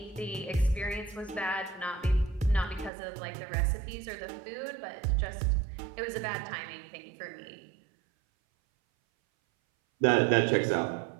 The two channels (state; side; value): drops out; left; at 2.9 s